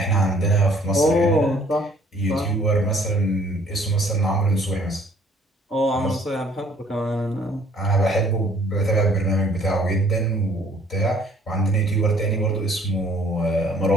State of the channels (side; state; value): both; normal; correlation 0.59